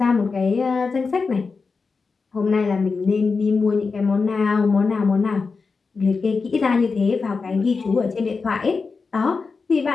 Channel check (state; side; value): quieter; right; 4.6 dB